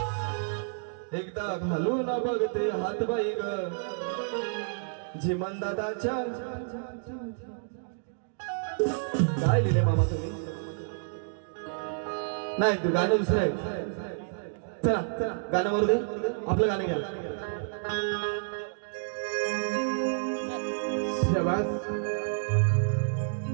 एकदा घालून बघते हात बाई ग झिमन दादाच्या. काय लिहिले मामा तुम्ही? नाही गाणं दुसरं आहे. चला गाणं मारू दे. आपलं गाणं घ्या. शाबास.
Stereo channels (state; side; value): silent; left; digital silence